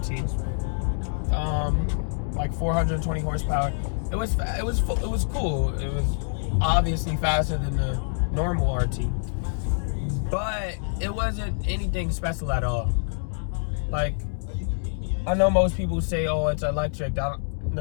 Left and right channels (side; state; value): right; silent; digital silence